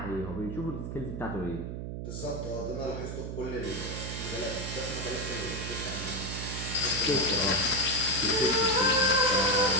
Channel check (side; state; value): right; noise; hum, 6 dB below the sound